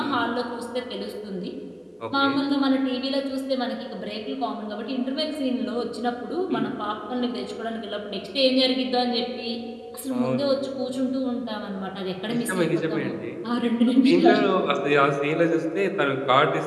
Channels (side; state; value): both; identical; correlation 1.00